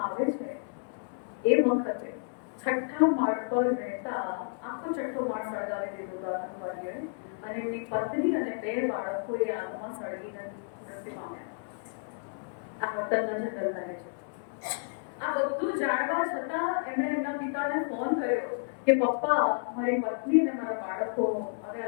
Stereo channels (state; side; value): silent; right; 57 dB below the other